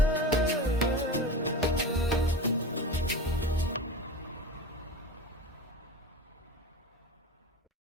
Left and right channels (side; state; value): both; normal; correlation 0.30